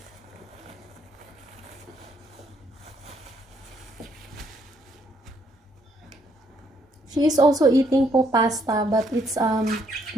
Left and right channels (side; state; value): both; normal; correlation 0.70